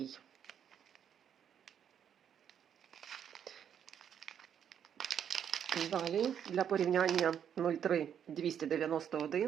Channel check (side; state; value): left; quieter; 8.7 dB